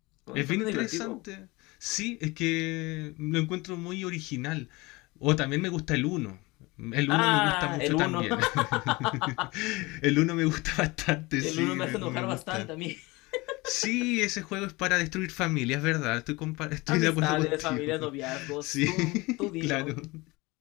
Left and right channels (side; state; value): right; quieter; 23.2 dB